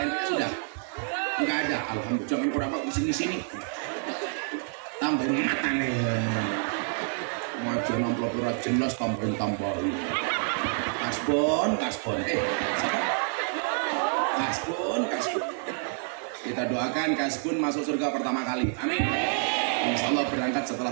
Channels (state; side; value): silent; left; 56 dB below the other